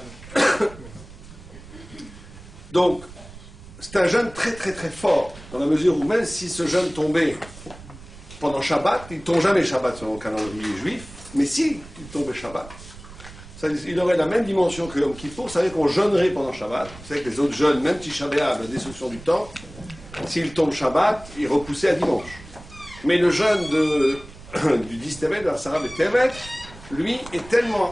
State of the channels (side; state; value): right; noise; rumble, 17 dB below the sound